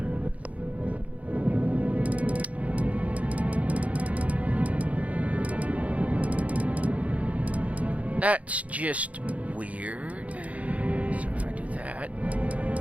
that's just weird. So if I do that,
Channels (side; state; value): left; late; 0.067 ms